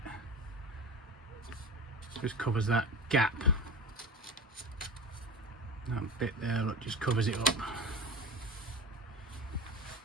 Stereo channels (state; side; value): normal; both; correlation 0.31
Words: Just covers that gap. That bit there, look, just covers it up.